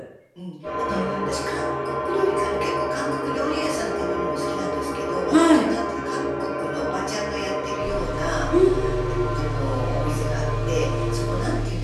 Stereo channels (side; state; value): both; identical; correlation 1.00